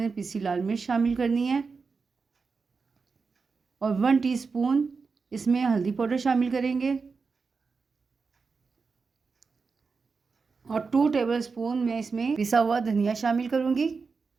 पिसी लाल मिर्च शामिल करनी है और 1 टीस्पून इसमें हल्दी पाउडर शामिल करेंगे और 2 टेबलस्पून मैं इसमें पिसा हुआ धनिया शामिल करूँगी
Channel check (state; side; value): quieter; left; 4.8 dB